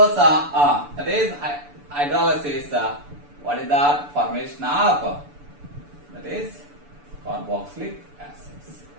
that is hydrolysis. What is that? Formation of that is carboxylic acids.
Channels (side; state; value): left; late; 6.9 ms